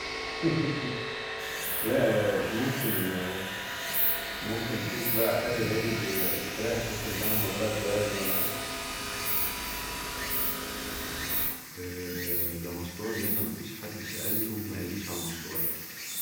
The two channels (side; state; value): both; identical; correlation 1.00